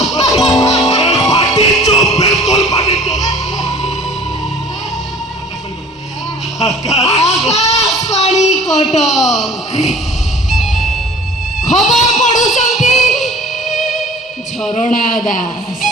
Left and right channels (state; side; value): normal; both; correlation 0.47